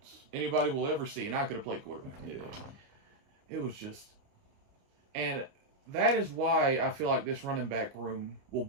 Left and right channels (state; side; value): late; left; 29 ms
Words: anybody will ever see, and I could have played quarterback. Yeah. It was just... And that is why I feel like this running back room will